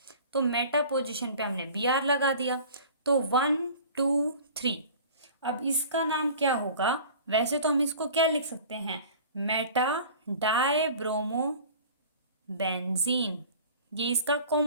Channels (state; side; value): inverted; both; correlation -0.43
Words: तो मेटा पोजीशन पे हमने Br लगा दिया, तो 1 2 3। अब इसका नाम क्या होगा, वैसे तो हम इसको क्या लिख सकते हैं, मेटा डाई ब्रोमो बेंजीन, ये इसका